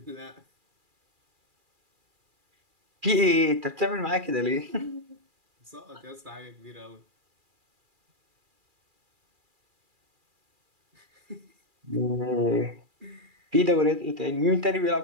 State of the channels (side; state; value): left; late; 2.4 ms